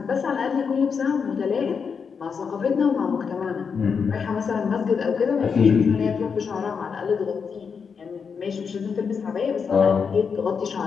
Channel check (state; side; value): quieter; right; 6.0 dB